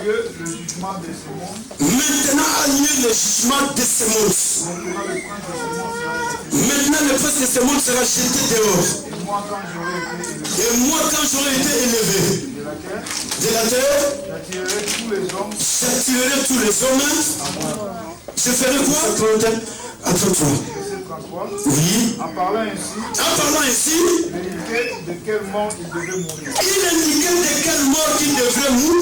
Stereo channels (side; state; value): both; identical; correlation 1.00